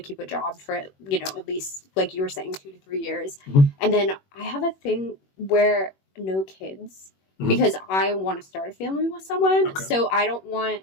keep a job for, at least like you were saying, 2 to 3 years. And then I have a thing where no kids, because I want to start a family with someone. Okay. So I don't want,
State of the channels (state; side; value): late; right; 21 ms